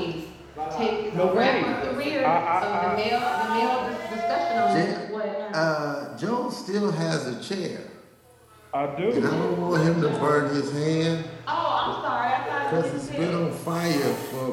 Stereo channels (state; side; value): identical; both; correlation 1.00